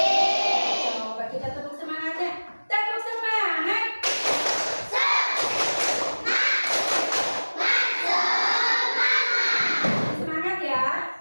Coba kita tepuk semangatnya. Tepuk semangat. Semangat ya.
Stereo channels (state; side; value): inverted; both; correlation -1.00